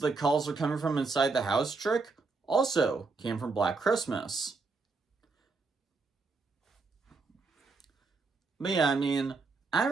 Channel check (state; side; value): quieter; left; 4.1 dB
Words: calls are coming from inside the house" trick also came from Black Christmas. But yeah, I mean, I